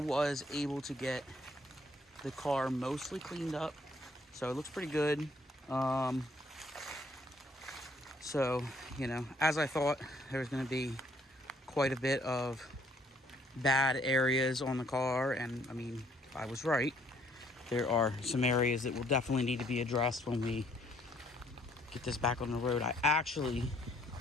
able to get the car mostly cleaned up, so it looks pretty good. So, you know, as I thought, there's going to be quite a bit of bad areas on the car, and I mean, I was right. There are some areas that will definitely need to be addressed when we get this back on the road. I actually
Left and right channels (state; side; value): normal; both; correlation 0.64